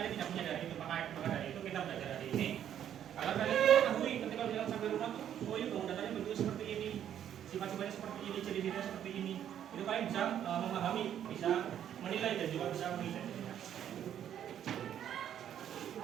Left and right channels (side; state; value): left; quieter; 10.1 dB